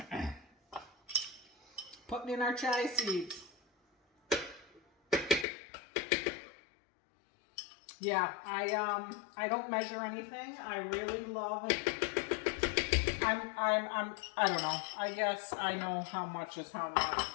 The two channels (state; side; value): drops out; right; at 5.5 s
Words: in our chai seeds. Yeah, I don't measure anything. I really love it. I don't know. I guess I know how much is how much,